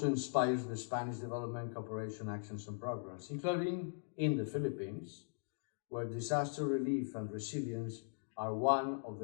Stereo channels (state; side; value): silent; right; digital silence